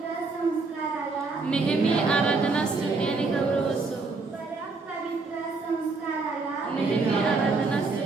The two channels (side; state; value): left; quieter; 4.0 dB